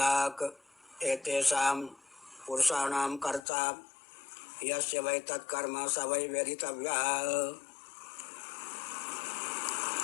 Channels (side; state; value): right; drops out; at 3.4 s